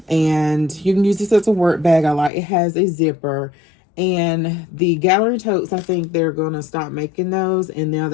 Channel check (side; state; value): right; drops out; at 2.3 s